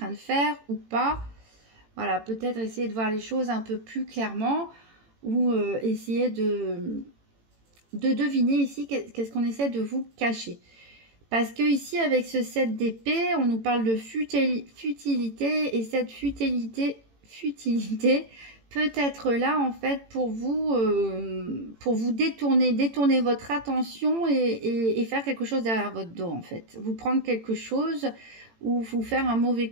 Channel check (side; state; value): left; late; 18 ms